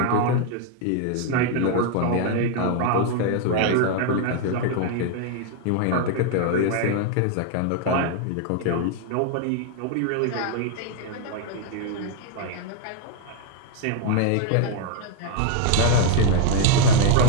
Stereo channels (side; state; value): both; different; correlation 0.00